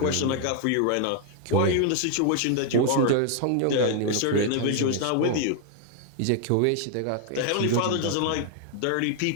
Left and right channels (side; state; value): both; different; correlation 0.00